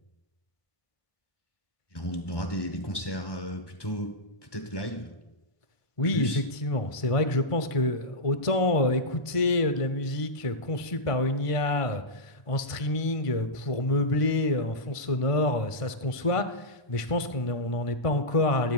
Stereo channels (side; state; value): right; late; 1.5 ms